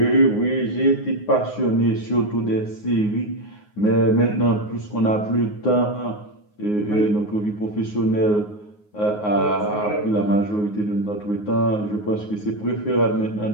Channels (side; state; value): right; late; 9.5 ms